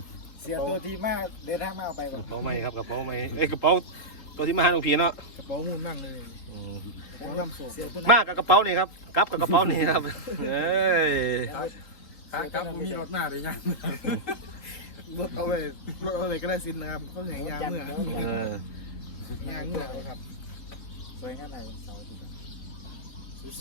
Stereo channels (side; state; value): right; late; 3.6 ms